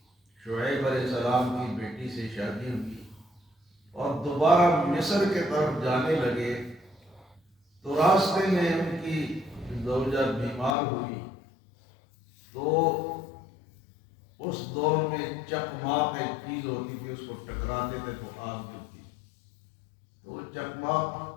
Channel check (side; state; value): right; drops out; at 10.8 s